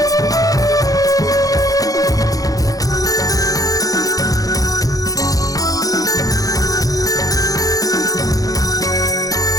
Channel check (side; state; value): right; late; 0.17 ms